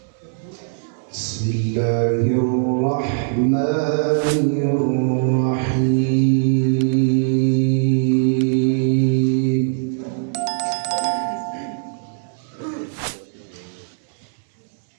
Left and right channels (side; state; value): left; silent; 65 dB below the other